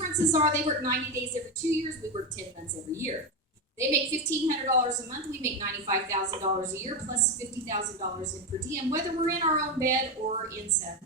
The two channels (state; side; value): normal; both; correlation 0.11